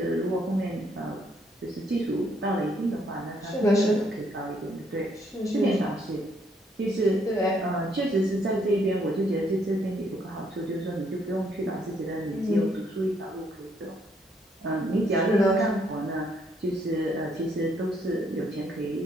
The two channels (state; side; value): normal; both; correlation 0.71